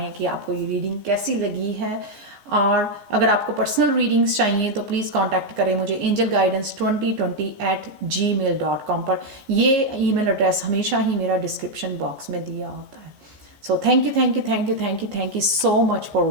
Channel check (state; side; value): late; left; 15 ms